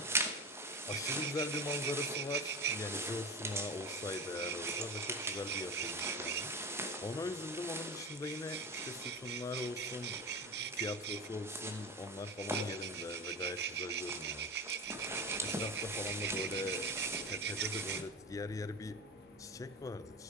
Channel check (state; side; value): normal; both; correlation 0.28